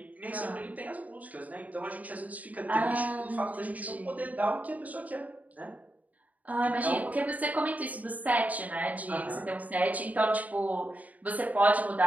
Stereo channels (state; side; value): late; left; 0.074 ms